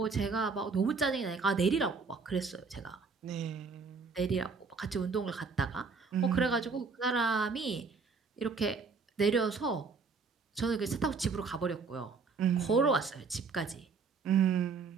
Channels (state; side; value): quieter; left; 4.8 dB